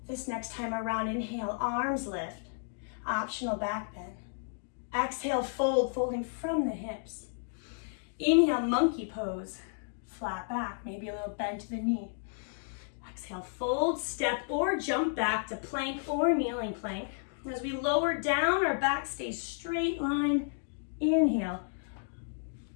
this next time around. Inhale, arms lift, optional back bend. Exhale, fold, folding from the hips. Inhale, monkey pose, flat back, maybe a little bend to the knee. Exhale, fold, step or jump back to plank or kneeling plank. As we lower down, our back stays straight line. Inhale,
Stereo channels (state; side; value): silent; right; digital silence